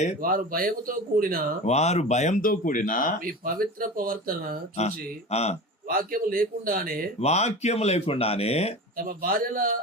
వారు భయముతో కూడిన మీ పవిత్ర ప్రవర్తన చూసి వాక్యము లేకుండానే తమ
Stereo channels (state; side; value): normal; both; correlation 0.31